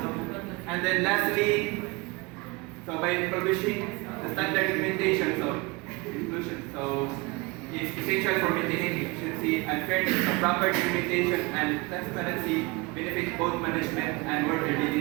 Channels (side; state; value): left; quieter; 25.8 dB